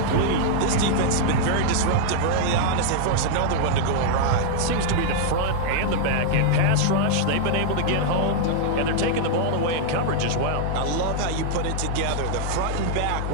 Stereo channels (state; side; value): different; both; correlation -0.01